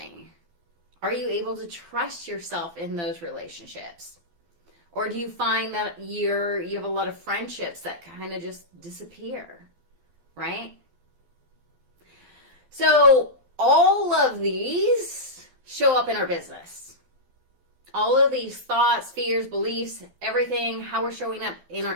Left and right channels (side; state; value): left; late; 12 ms